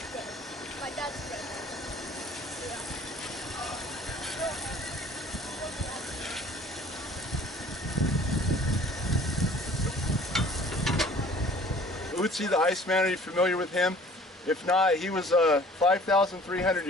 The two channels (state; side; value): normal; both; correlation 0.51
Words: My dad's friend. Otzi the Iceman, are you familiar with him? If not, he was 5,300